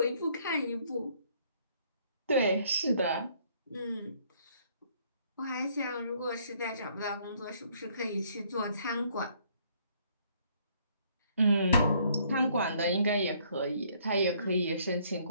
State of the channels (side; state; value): both; inverted; correlation -0.65